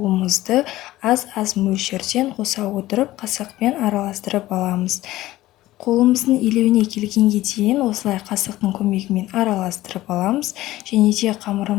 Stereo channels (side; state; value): right; quieter; 16.2 dB